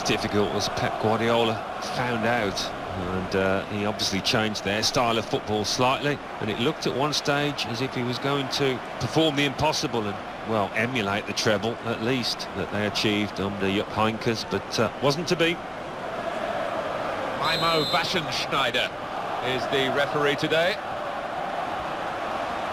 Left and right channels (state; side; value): identical; both; correlation 1.00